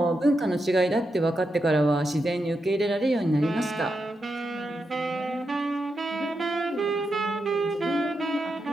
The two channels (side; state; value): both; normal; correlation 0.86